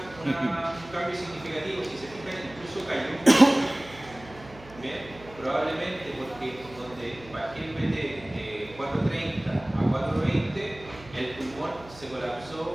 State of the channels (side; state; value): right; noise; hum, 20 dB below the sound